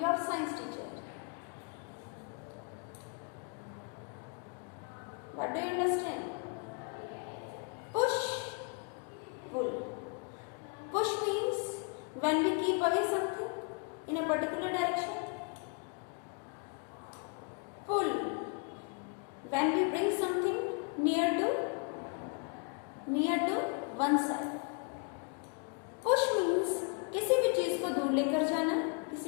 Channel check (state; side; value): quieter; right; 35.0 dB